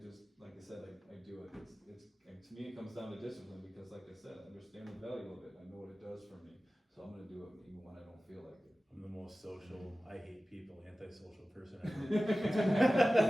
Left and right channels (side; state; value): both; normal; correlation 0.96